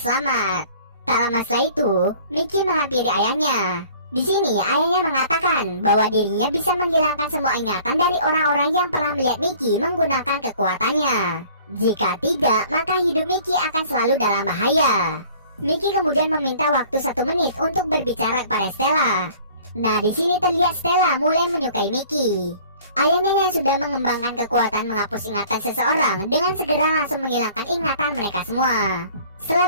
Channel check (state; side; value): inverted; both; correlation -0.51